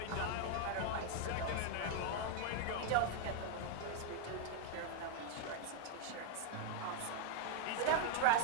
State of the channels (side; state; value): both; different; correlation 0.00